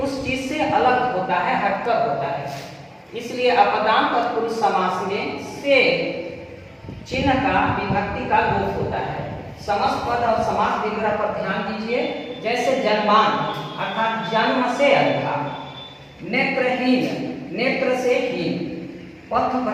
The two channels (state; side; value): identical; both; correlation 1.00